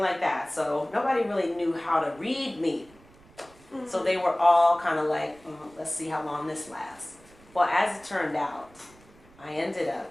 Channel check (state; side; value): noise; right; rumble, 26 dB below the sound